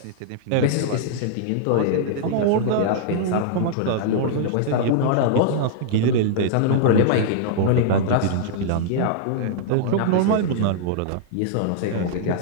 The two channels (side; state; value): both; different; correlation -0.02